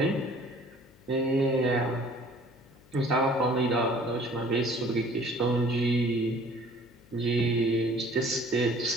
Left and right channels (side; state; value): left; noise; hum, 26 dB below the sound